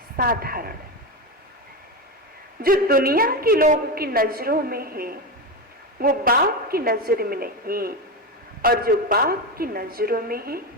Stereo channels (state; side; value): normal; both; correlation 0.16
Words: साधारण। जो दुनिया के लोगों की नजरों में है वो बाप की नजर में नहीं, और जो बाप की नजरों में है